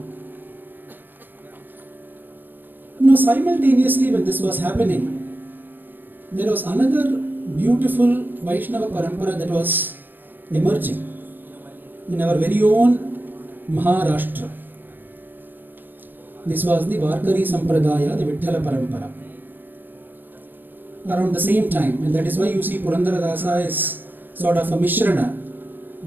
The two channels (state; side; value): late; left; 0.091 ms